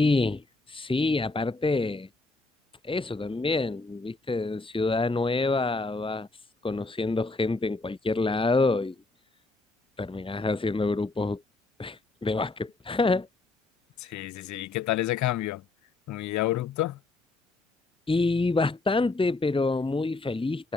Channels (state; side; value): quieter; right; 3.4 dB